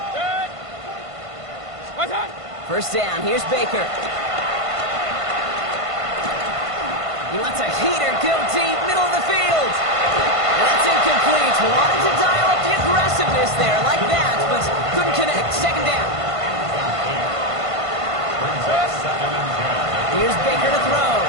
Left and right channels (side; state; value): left; late; 1.5 ms